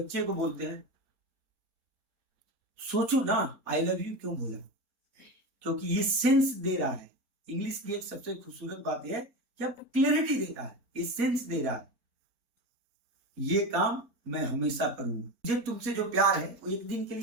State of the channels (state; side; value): late; left; 4.0 ms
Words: को बोलते हैं। सोचो ना, आई लव यू क्यों बोला? क्योंकि ये सेंस दे रहा है। इंग्लिश की एक सबसे खूबसूरत बात है कि आपको क्लियरिटी देता है, ये सेंस दे रहा है, ये काम मैं हमेशा करूंगा। मुझे तुमसे जो प्यार है वो एक दिन के